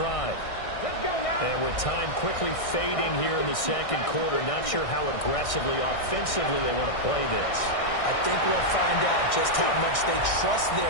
Let's go now. And with time quickly fading here in the second quarter, not sure how aggressively, offensively they want to play this. I think we'll find out just how much they trust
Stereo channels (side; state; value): right; late; 1.6 ms